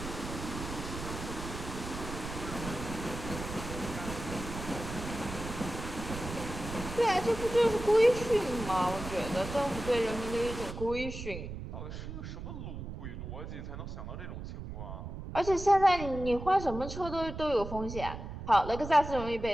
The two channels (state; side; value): noise; right; rumble, 8 dB below the sound